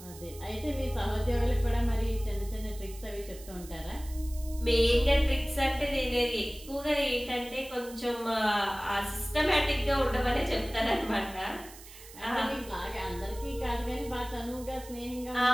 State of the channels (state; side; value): noise; right; hiss, 18 dB below the sound